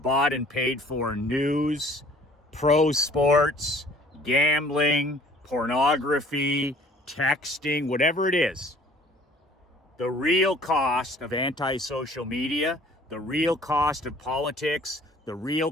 and paid for news, pro sports, gambling, pornography, texting, whatever it is. The real cost of anti-social media, the real cost of politics, the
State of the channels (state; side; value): normal; both; correlation 0.53